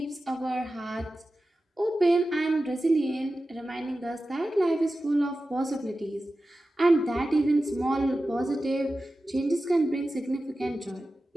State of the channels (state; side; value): normal; both; correlation 0.94